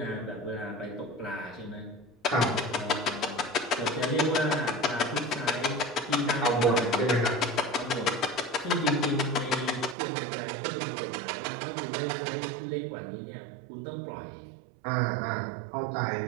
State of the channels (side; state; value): left; drops out; at 10.0 s